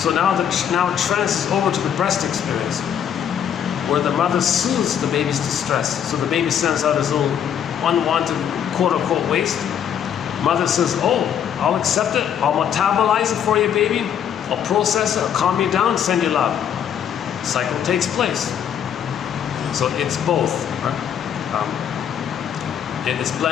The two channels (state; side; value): quieter; right; 8.9 dB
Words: now it transfers over to the breast experience, where the mother soothes the baby's distress. So the baby sends out his little unwanted quote-unquote waste. Mother says, oh, I'll accept it, I'll metabolize it for you, baby, I'll process it, I'll calm you down, send you love. Cycle takes place. So it's both, right? And it's